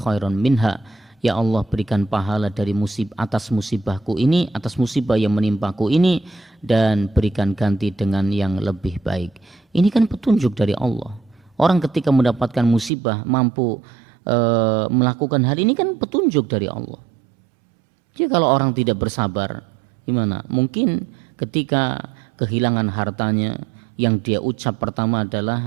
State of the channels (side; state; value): left; drops out; at 12.9 s